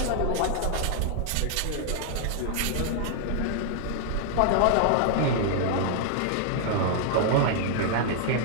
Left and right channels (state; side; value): different; both; correlation 0.00